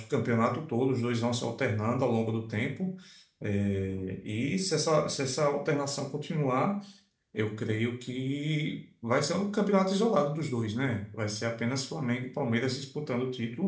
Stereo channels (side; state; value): both; identical; correlation 1.00